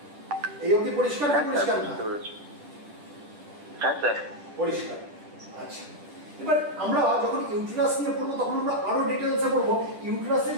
এই অবধি পরিষ্কার কি হ্যাঁ পরিষ্কার স্যার না? বুঝতে পেরেছি। হ্যাঁ স্যার। পরিষ্কার। আচ্ছা, এবার আমরা যখন ইউটেরাস নিয়ে পড়বো তখন আমরা আরো ডিটেলসে পড়বো। ইউটেরাসের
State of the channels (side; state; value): left; late; 10 ms